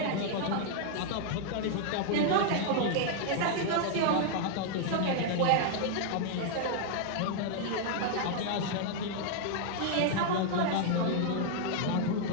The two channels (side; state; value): both; different; correlation -0.01